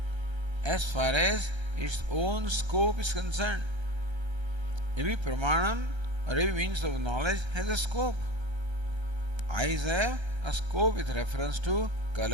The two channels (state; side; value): late; left; 1.3 ms